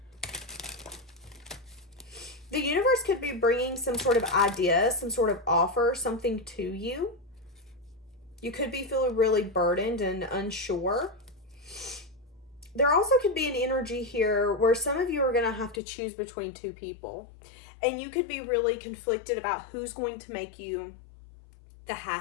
The universe could be bringing some sort of idea, some sort of offer, something to you. You could be feeling really burdened and unsure. There also could be an energy here where some of you are going to have to choose between two people. And you could be really conflicted about who's going to make you the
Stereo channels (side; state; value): right; drops out; at 15.8 s